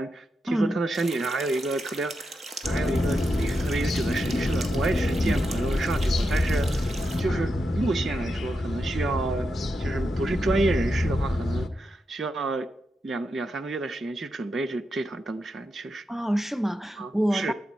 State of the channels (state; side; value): normal; both; correlation 0.86